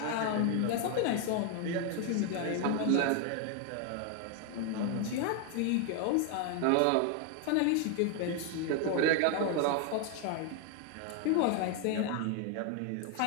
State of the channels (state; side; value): different; both; correlation 0.01